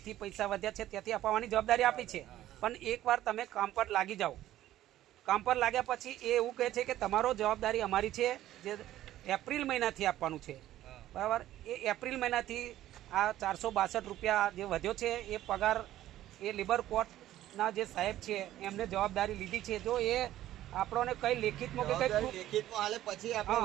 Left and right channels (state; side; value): quieter; left; 13.6 dB